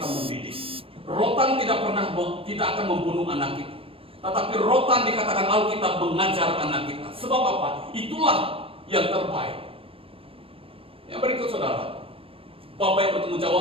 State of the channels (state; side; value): late; left; 0.27 ms